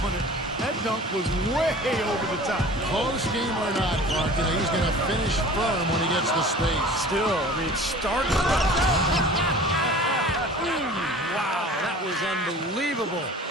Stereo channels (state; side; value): normal; both; correlation 0.43